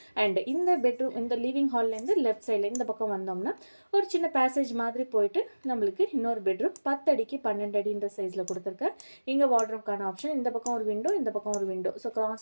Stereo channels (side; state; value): both; inverted; correlation -1.00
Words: அண்ட் இந்த பெட்ரூம் இந்த லிவிங் ஹால்லேருந்து லெஃப்ட் சைடில் இந்த பக்கம் வந்தோம்னா ஒரு சின்ன பேசேஜ் மாதிரி போயிட்டு நம்மளுக்கு இன்னொரு பெட்ரூம் 10 அடிக்கு 12 அடின்ற சைஸில் கொடுத்துருக்கேன். இங்கே வார்ட்ரோப்கான ஆப்ஷன், இந்த பக்கம் ஒரு விண்டோ, இந்த பக்கம் ஒரு window. So